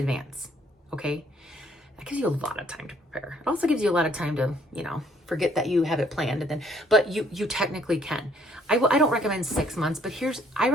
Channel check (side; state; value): both; normal; correlation 0.63